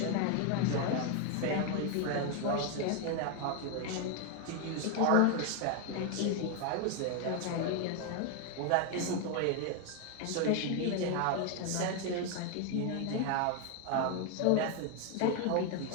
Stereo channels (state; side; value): different; both; correlation 0.01